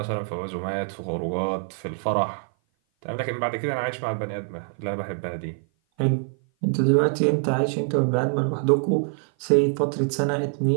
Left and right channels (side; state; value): left; silent; 56 dB below the other